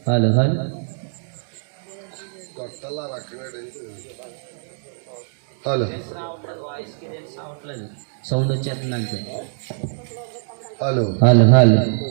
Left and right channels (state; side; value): silent; left; digital silence